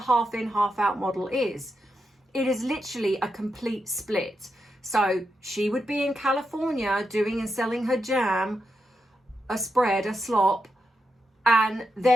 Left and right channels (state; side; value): normal; both; correlation 0.86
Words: in, half out model is. It is literally a complete split. So she would be in California doing and selling her jam, a spread, a slop. And